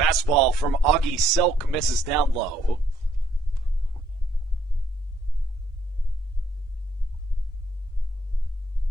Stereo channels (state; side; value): normal; both; correlation 0.69